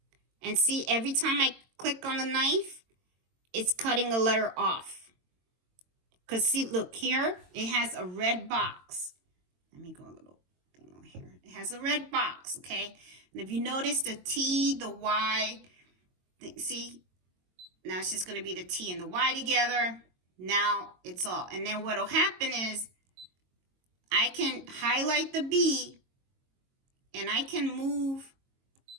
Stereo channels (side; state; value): left; late; 22 ms